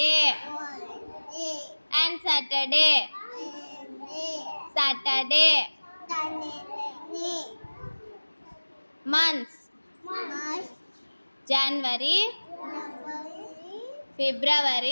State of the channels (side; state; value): both; inverted; correlation -1.00